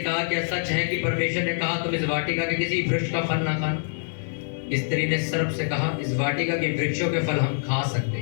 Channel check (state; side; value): silent; right; digital silence